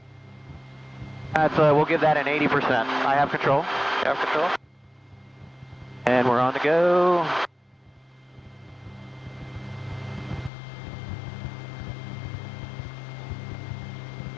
That's we'll give that an 80%. I have control. You have control? And we're on the go.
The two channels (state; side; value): drops out; right; at 10.5 s